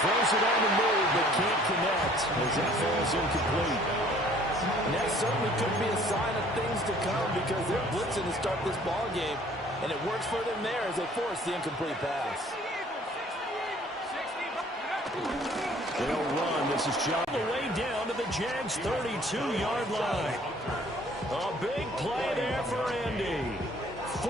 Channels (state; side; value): normal; both; correlation 0.56